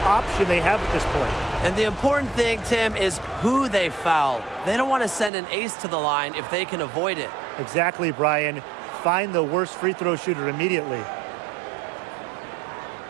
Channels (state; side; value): drops out; left; at 5.3 s